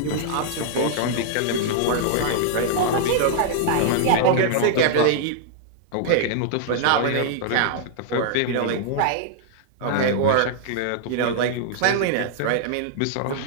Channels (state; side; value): different; both; correlation -0.01